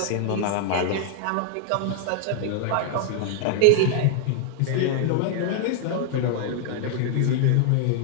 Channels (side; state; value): both; different; correlation -0.01